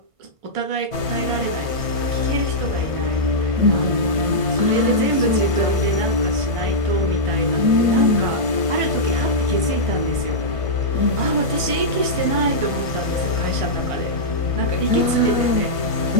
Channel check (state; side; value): late; left; 1.5 ms